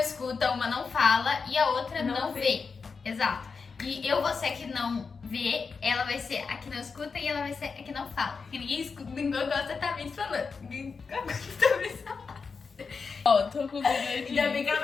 uma não fala e a outra não vê. Exato. E eu vou ser a que não vê, ela vai ser a que não escuta e ela vai ser a que não fala. Porque ninguém escuta, ninguém gosta tá me falando. Ninguém gosta tá me falando. Ó, tô com medo. Ainda bem que ela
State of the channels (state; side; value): quieter; right; 5.1 dB